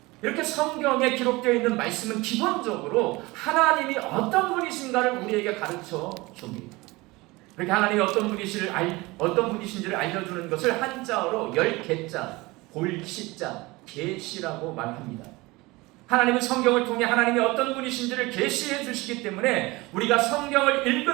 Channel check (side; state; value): left; quieter; 22.2 dB